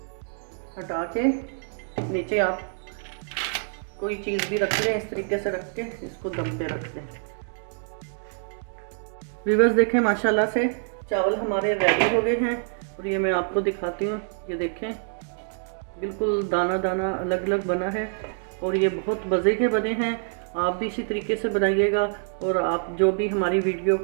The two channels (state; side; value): silent; left; digital silence